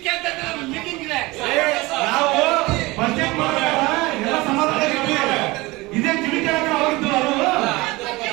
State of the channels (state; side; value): quieter; left; 21.8 dB